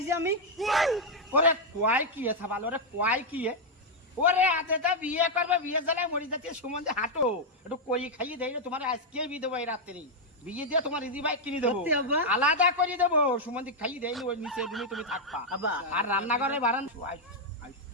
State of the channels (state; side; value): normal; both; correlation -0.01